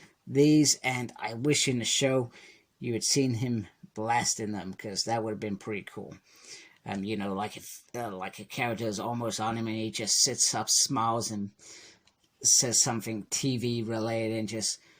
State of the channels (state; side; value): identical; both; correlation 1.00